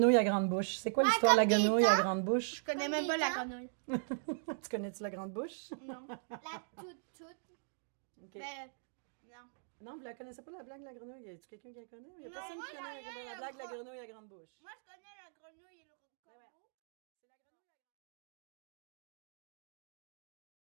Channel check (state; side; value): silent; left; digital silence